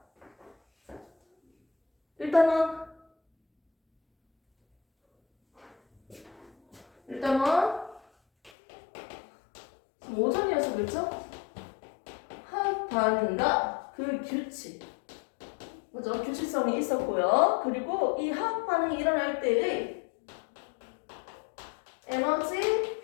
1단원 지금 오전이어서 그렇죠? 화학 반응과 그 규칙, 그죠? 규칙성이 있었고요. 그리고 이 화학 반응이 일어날 때의 에너지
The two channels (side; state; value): right; drops out; at 8.5 s